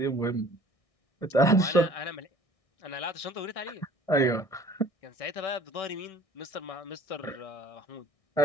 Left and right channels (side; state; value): right; late; 1.6 ms